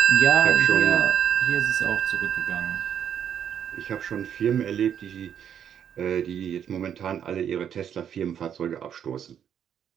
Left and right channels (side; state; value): left; quieter; 8.9 dB